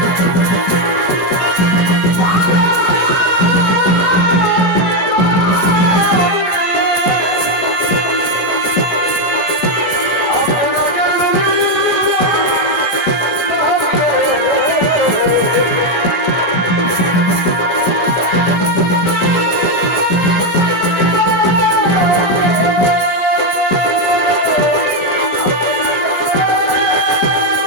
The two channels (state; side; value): late; right; 17 ms